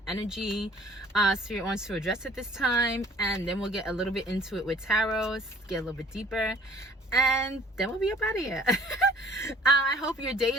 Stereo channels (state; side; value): normal; both; correlation 0.53